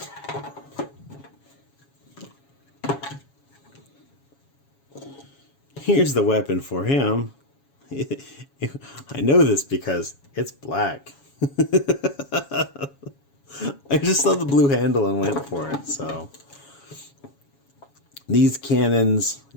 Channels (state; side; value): late; right; 7.2 ms